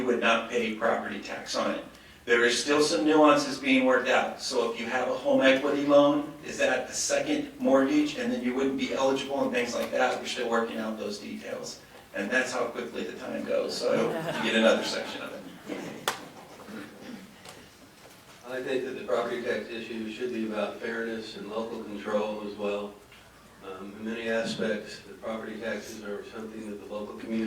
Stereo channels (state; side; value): identical; both; correlation 1.00